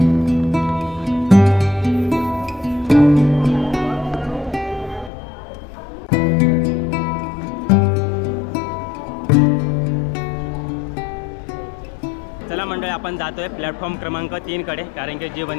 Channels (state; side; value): drops out; right; at 5.1 s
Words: चला मंडळी आपण जातोय प्लॅटफॉर्म क्रमांक 3 कडे, कारण की जी